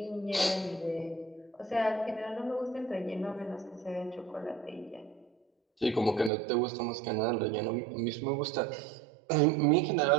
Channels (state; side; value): drops out; left; at 6.3 s